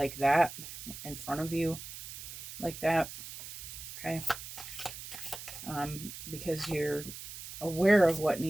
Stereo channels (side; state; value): right; noise; hiss, 11 dB below the sound